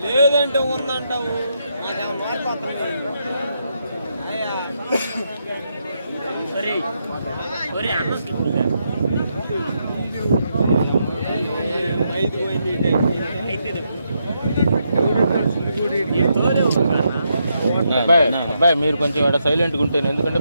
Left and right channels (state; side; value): inverted; both; correlation -0.80